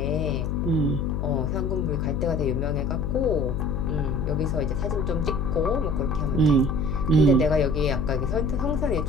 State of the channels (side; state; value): left; noise; hum, 1 dB below the sound